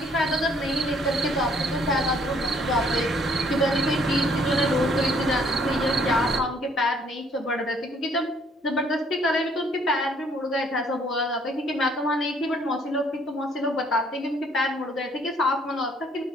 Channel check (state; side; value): normal; both; correlation 0.63